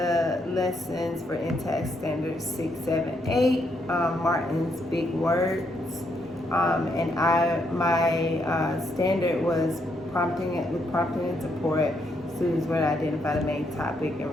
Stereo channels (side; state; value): both; normal; correlation 0.76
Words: lessons for InTASC Standards 6, 7, 8, Martin's Big Words. And my standard was prompting and support. Students were to identify the main topic and